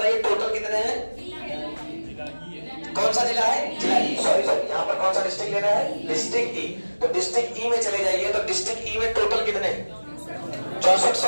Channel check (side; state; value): both; inverted; correlation -1.00